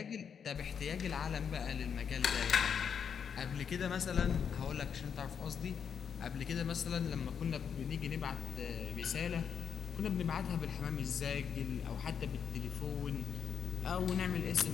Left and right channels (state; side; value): quieter; right; 7.2 dB